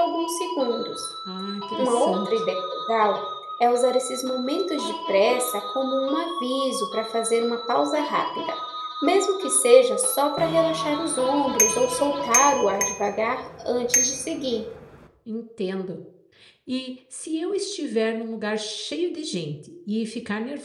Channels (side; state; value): both; identical; correlation 1.00